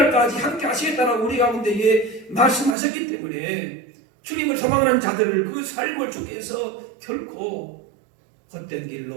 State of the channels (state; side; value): drops out; left; at 2.8 s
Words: 함께 하시겠다라고 우리 가운데에 말씀하셨기 때문에 주님을 소망하는 자들을 그 삶을 주께서 결코 헛된